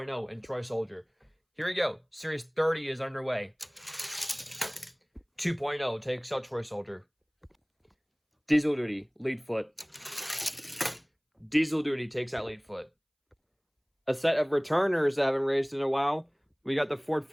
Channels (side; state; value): both; identical; correlation 1.00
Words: and Troy Soldier. Here we go. Series 30 is underway. 2.0 takes out Troy Soldier. Diesel Duty, lead foot. Diesel Duty takes out lead foot. A set of returners that haven't raced in a while. We got the Ford